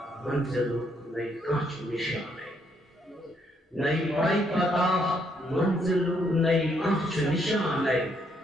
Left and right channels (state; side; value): normal; both; correlation 0.72